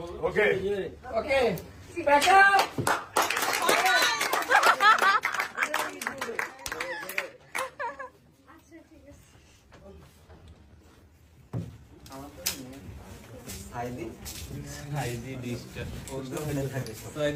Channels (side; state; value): both; identical; correlation 1.00